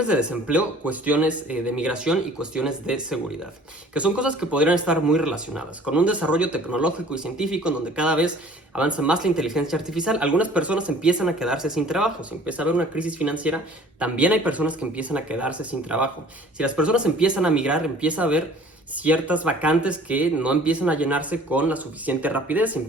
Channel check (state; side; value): normal; both; correlation 0.50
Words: de desempleo, cuestiones de migración y cuestiones de seguridad, que son cosas que podrían estar muy relacionadas. Con un desarrollo tecnológico y científico en donde cada vez avanza más la inteligencia artificial, algunas personas empiezan a quedarse sin trabajo. Si empieza a haber una crisis financiera, también hay personas que empiezan a quedarse sin trabajo. Si las personas empiezan a migrar, empieza a haber ciertas vacantes que no empiezan a llenarse con la suficiente rapidez,